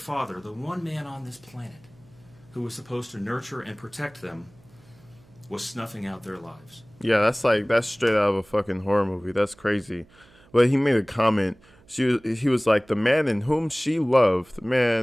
the one man on this planet who was supposed to nurture and protect them, was snuffing out their lives. Yeah, that's straight out of a fucking horror movie. That's crazy. But he made a comment. He was like, the man in whom she loved,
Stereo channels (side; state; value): right; noise; hum, 28 dB below the sound